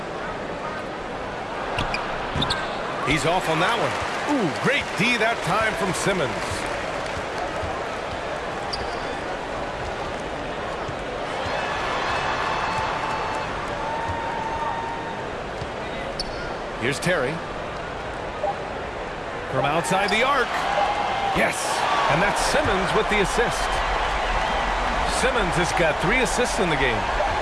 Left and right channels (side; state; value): both; identical; correlation 1.00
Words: He's off on that one. Ooh, great D that time from Simmons. Here's Terry. From outside the arc. Yes, and that's Simmons with the assist. Simmons has got 3 assists in the game.